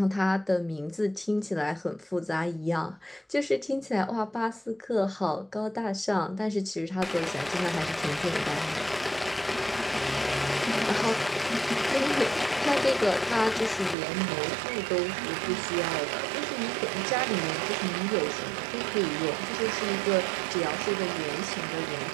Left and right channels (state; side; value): drops out; left; at 14.0 s